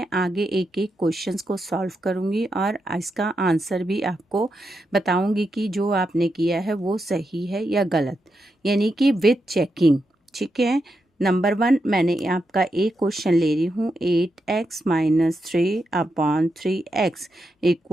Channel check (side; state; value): both; normal; correlation 0.85